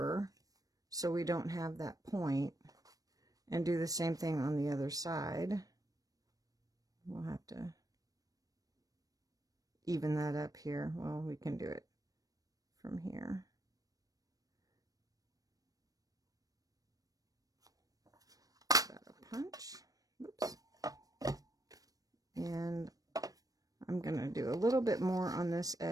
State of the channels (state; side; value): late; left; 0.18 ms